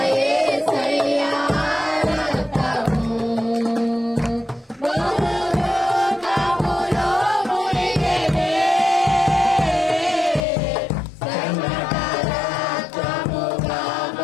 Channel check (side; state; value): right; drops out; at 10.4 s